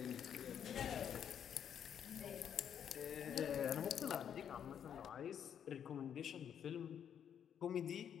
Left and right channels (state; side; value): quieter; right; 8.7 dB